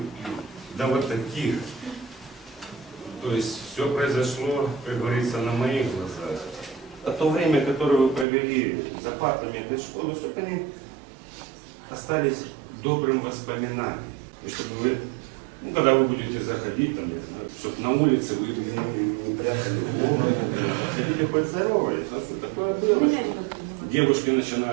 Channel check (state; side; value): drops out; left; at 8.2 s